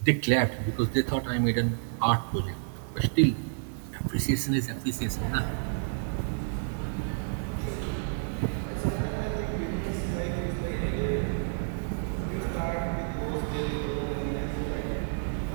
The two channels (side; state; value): left; silent; digital silence